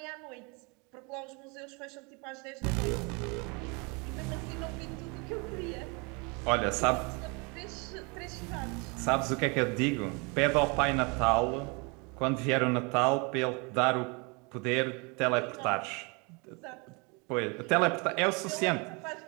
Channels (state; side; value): quieter; left; 30.9 dB